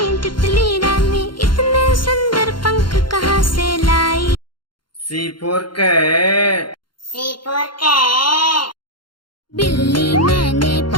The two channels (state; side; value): late; right; 0.72 ms